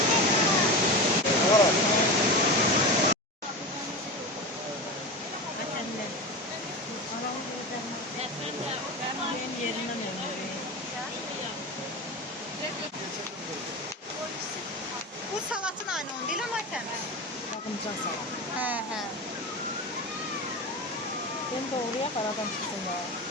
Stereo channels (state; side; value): normal; both; correlation 0.25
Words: Bu salatın aynı onun değil ama təmiz. Bakımcan salam. Hə. Ben doğruya aradan çıksın ya.